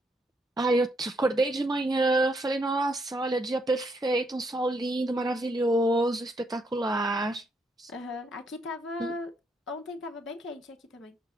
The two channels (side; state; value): both; normal; correlation 0.75